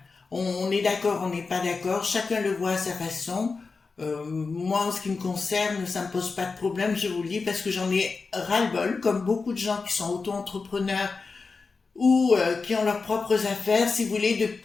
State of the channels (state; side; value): quieter; right; 4.4 dB